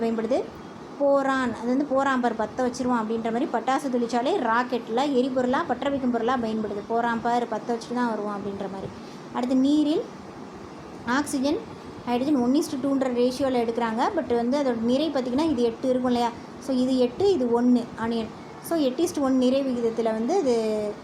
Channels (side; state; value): both; identical; correlation 1.00